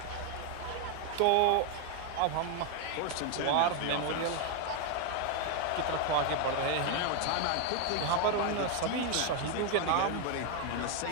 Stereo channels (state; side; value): different; both; correlation 0.01